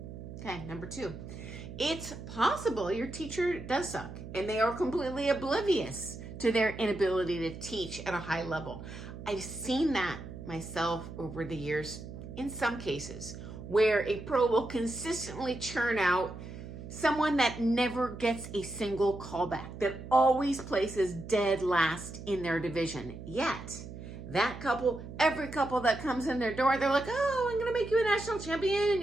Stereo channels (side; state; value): right; noise; hum, 11 dB below the sound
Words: Okay, number 2. It's possible your teacher does suck, and they are completely oblivious to their inability to teach at a high level. I've seen that myself over the years in some cases, where a pro will consistently churn out someone that never gets a single callback, that always places dead last in their division. Yet, that couple, every couple that comes in their door, they're like, oh, I'm gonna make you a national